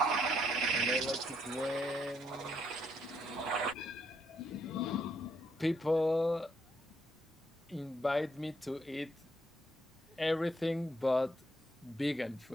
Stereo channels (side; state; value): both; normal; correlation 0.74